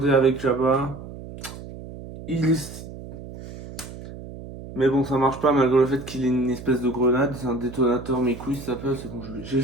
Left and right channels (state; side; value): noise; right; hum, 13 dB below the sound